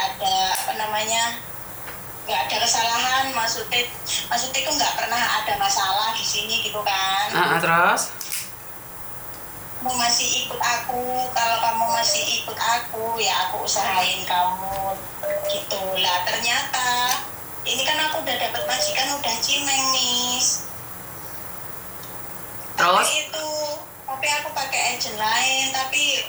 apa namanya, nggak ada kesalahan, maksudnya itu nggak pernah ada masalah di sini gitu kan. Terus? Kamu masih ikut aku, kalau kamu masih ikut aku ya aku usahain kamu gitu lah. Ternyata ini kan aku udah dapat majikan, udah cimeng, Miss. Terus? Tapi aku pakai agent lain, tapi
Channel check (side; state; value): both; identical; correlation 1.00